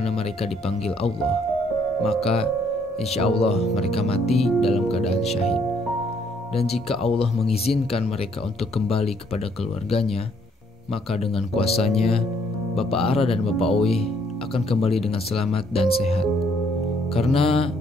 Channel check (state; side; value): normal; both; correlation 0.67